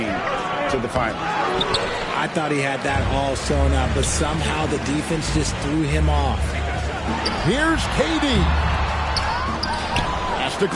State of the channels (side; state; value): both; identical; correlation 1.00